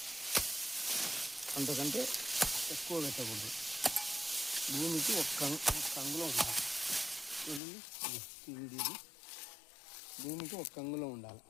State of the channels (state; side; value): drops out; right; at 7.6 s